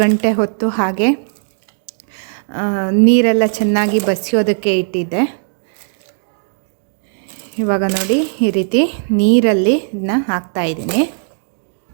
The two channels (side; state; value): left; silent; digital silence